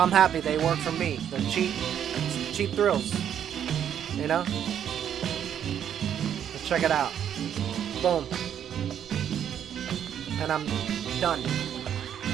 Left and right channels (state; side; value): quieter; left; 9.4 dB